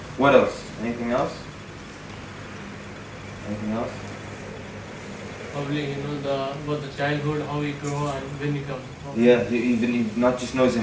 What else? Anything else? Anything else? Probably about the childhood, how he grew and when he comes. Yeah, he not just knows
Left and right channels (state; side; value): identical; both; correlation 1.00